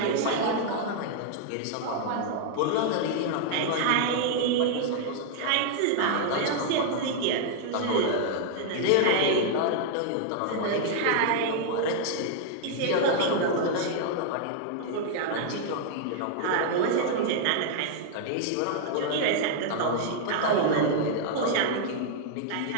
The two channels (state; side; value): different; both; correlation -0.01